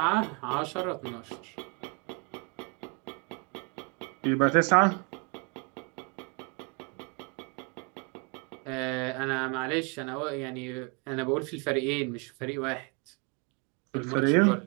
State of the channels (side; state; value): left; quieter; 33.5 dB